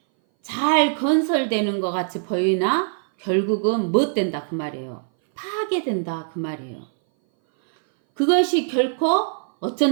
잘 건설되는 것 같이 보이나 결국은 못 된다 그 말이에요. 파괴된다 그 말이에요. 그것이 결코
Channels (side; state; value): left; silent; 59 dB below the other